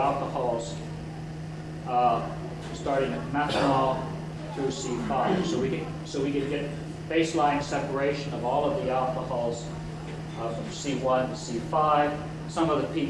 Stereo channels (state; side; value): identical; both; correlation 1.00